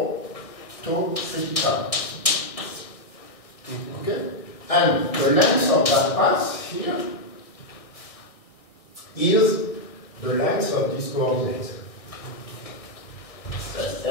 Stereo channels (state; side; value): late; right; 1.6 ms